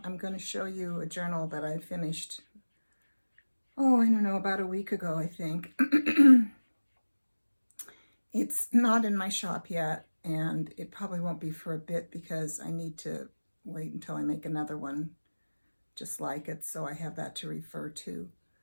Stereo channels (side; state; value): both; inverted; correlation -1.00